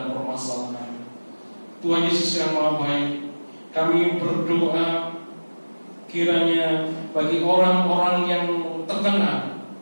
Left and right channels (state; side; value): inverted; both; correlation -1.00